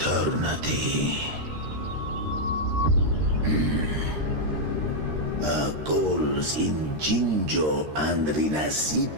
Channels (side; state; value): left; late; 13 ms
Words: Our goals in Jinjo and